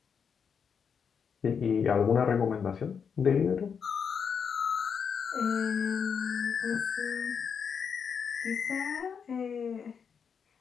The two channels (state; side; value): quieter; right; 6.6 dB